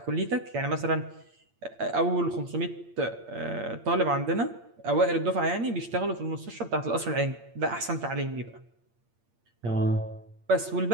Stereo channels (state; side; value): late; left; 8.7 ms